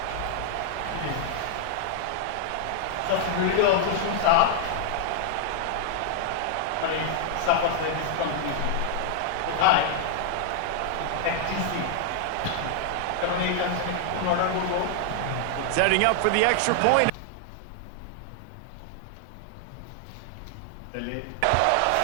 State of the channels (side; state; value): both; different; correlation 0.00